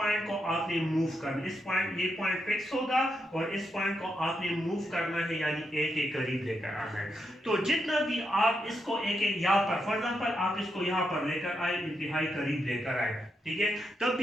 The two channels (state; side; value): normal; both; correlation 0.83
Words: को आपने मूव करना, इस पॉइंट ये पॉइंट फिक्स होगा और इस पॉइंट को आपने मूव करना है, यानी ए के करीब लेकर आना है। तो जितना भी आप इसको ए के यहाँ पर, फॉर एग्जाम्पल आप इसको यहाँ पर लेकर आए, इंतहाई करीब लेकर आए, ठीक है, तब